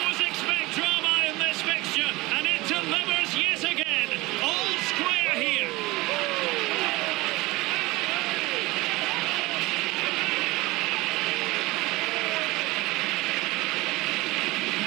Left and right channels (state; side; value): quieter; left; 21.3 dB